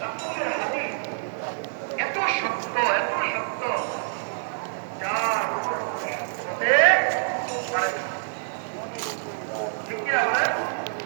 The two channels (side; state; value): left; silent; digital silence